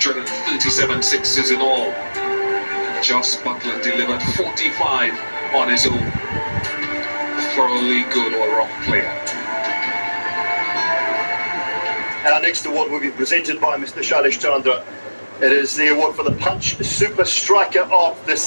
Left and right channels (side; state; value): both; inverted; correlation -1.00